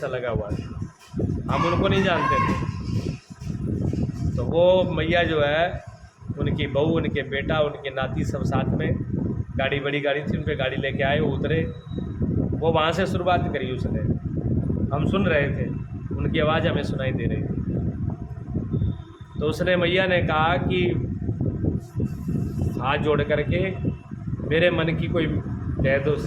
लगा हुआ था, हम उनको नहीं जानते थे। तो वो मैया जो है, उनकी बहू, उनके बेटा, उनके नाती सब साथ में, गाड़ी बड़ी गाड़ी थी, उन पर गाड़ी लेके आए, वो उतरे। वो वहाँ से शुरुआत करी उसने, हम सुन रहे थे, उनकी आवाज़ हमें सुनाई दे रही थी। तो उसने, मैया ने कहा कि हाथ जोड़ करके मेरे मन की कोई कह दो,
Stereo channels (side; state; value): both; identical; correlation 1.00